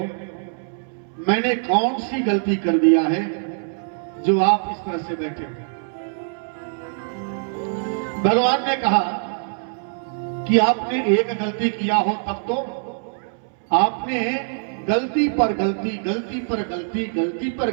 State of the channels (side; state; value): left; silent; 63 dB below the other